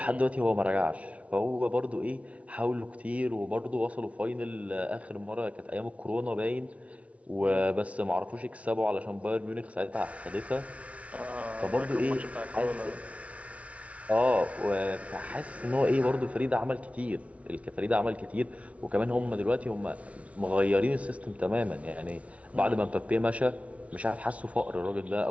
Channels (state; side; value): late; left; 0.064 ms